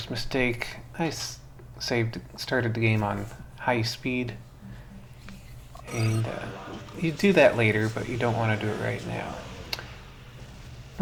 mistake. I started the game on high speed. And you do that later, but you don't want to do it right now.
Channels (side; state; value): both; identical; correlation 1.00